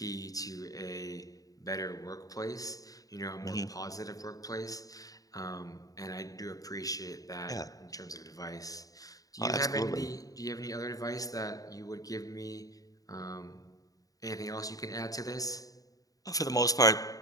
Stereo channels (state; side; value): late; right; 0.17 ms